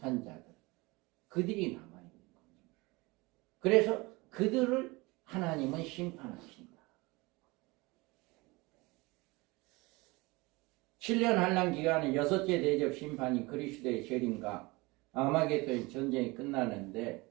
자들, 그들이 남아있는 거죠. 그래서 그들을 하나님은 심판하신다. 7년 한란 기간에 여섯째 대접 심판이 그리스도의 재림과 아마겟돈 전쟁이 끝나는데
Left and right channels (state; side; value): quieter; left; 23.8 dB